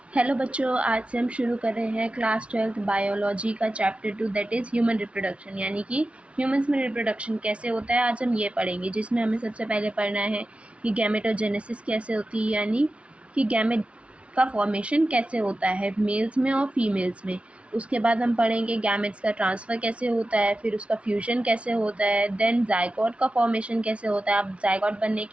Hello बच्चों, आज से हम शुरू कर रहे हैं क्लास 12th बायोलॉजी का chapter 2 that is human reproduction. यानी कि ह्यूमंस में रिप्रोडक्शन कैसे होता है आज हम ये पढ़ेंगे, जिसमें हमें सबसे पहले पढ़ना है कि गैमेटोजेनेसिस कैसे होती है, यानी कि गैमेट का फॉर्मेशन कैसे होता है मेल्स में और फीमेल्स में। उसके बाद हम पढ़ेंगे गैमेट्स का ट्रांसफ़र कैसे होता है, फिर उसका फ्यूजन कैसे होता है, देन जाइगोट का फॉर्मेशन कैसे होता है। अब जाइगोट बनने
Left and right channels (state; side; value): late; left; 0.061 ms